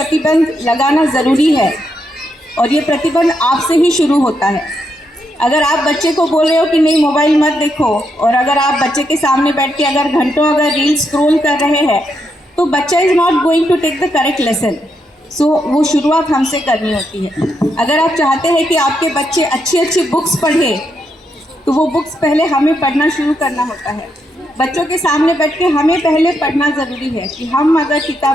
लगाना ज़रूरी है और ये प्रतिबंध आपसे ही शुरू होता है। अगर आप बच्चे को बोल रहे हो कि नहीं मोबाइल मत देखो, और अगर आप बच्चे के सामने बैठ के अगर घंटों अगर रील स्क्रॉल कर रहे हैं, तो बच्चा is not going to take the correct lesson. So वो शुरुआत हमसे करनी होती है। अगर आप चाहते हैं कि आपके बच्चे अच्छी अच्छी बुक्स पढ़े, तो वो बुक्स पहले हमें पढ़ना शुरू करना होता है। बच्चों के सामने बैठ के हमें पहले पढ़ना ज़रूरी है कि हम अगर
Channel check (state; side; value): normal; both; correlation 0.80